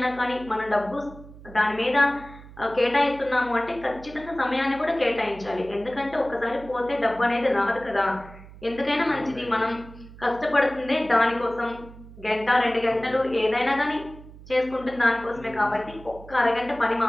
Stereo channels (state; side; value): noise; right; hum, 18 dB below the sound